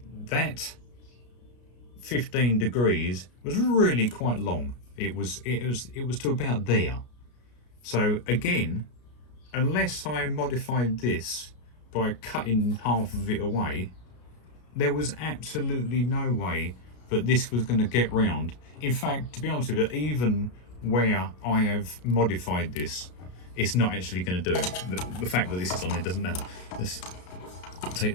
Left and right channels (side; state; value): right; late; 33 ms